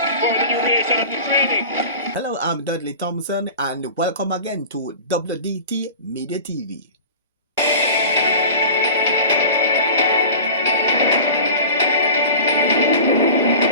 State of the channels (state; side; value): inverted; both; correlation -0.36